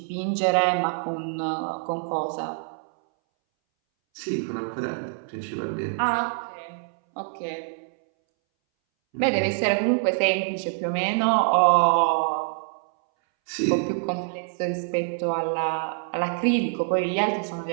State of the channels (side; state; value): left; silent; 61 dB below the other